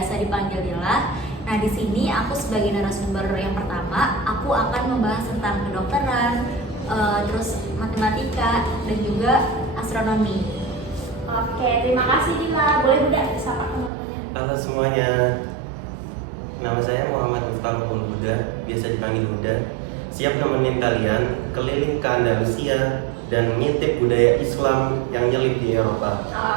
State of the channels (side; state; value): left; drops out; at 13.9 s